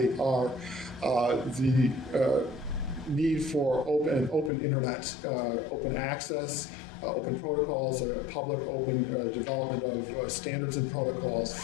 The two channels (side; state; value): right; drops out; at 4.5 s